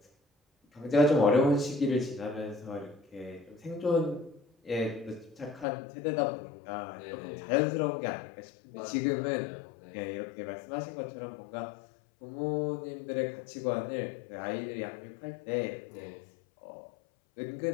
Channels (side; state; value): right; drops out; at 5.7 s